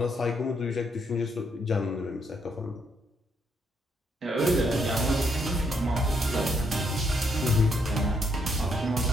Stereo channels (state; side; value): normal; both; correlation 0.74